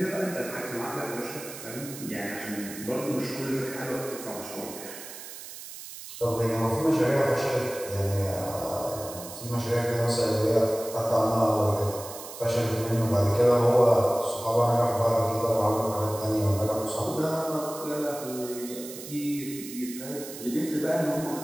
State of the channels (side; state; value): right; noise; hiss, 12 dB below the sound